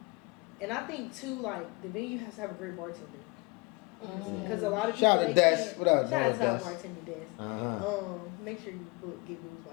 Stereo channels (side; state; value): right; quieter; 27.4 dB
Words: And I think too, like the venue has to have a great bartender. Because a lot of people Shout out to they Des. can't- What up, Shout out to our Des? bartender Des. Uh-huh. Make sure you get booze